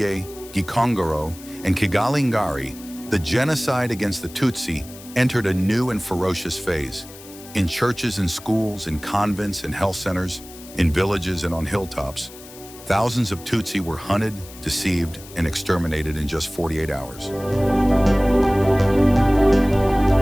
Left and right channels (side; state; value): left; noise; hiss, 18 dB below the sound